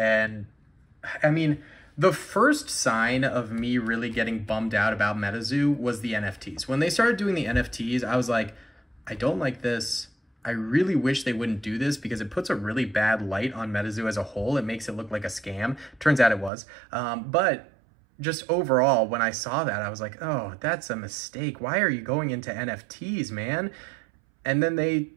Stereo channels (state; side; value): drops out; left; at 16.5 s